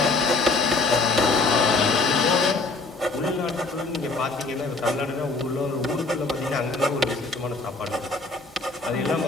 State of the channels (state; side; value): quieter; right; 3.6 dB